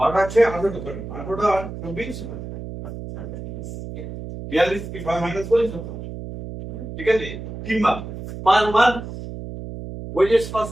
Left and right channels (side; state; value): right; noise; hum, 9 dB below the sound